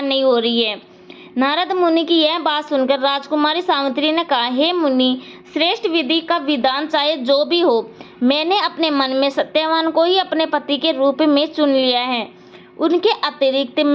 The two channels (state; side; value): identical; both; correlation 1.00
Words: नहीं हो रही है। नारद मुनि की यह बात सुनकर राजकुमारी सावित्री ने कहा, हे मुनि श्रेष्ठ, विधि का विधान चाहे जो भी हो, मैंने अपने मन में सत्यवान को ही अपने पति के रूप में चुन लिया है। उनके अतिरिक्त